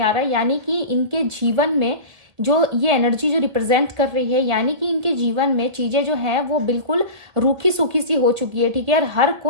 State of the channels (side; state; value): left; late; 1.8 ms